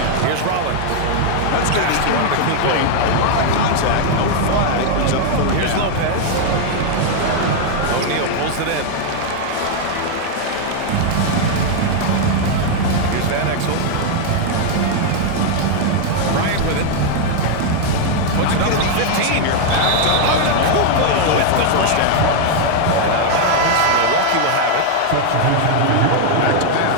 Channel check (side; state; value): both; different; correlation 0.00